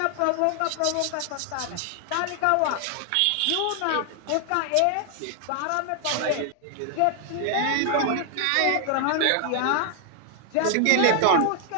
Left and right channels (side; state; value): both; different; correlation 0.00